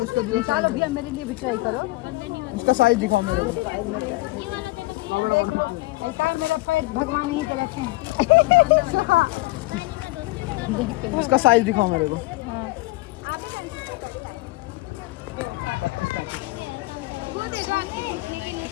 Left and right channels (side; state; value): right; quieter; 21.2 dB